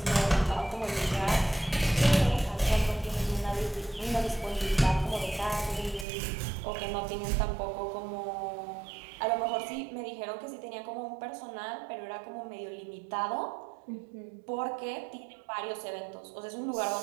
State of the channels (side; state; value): left; drops out; at 6.1 s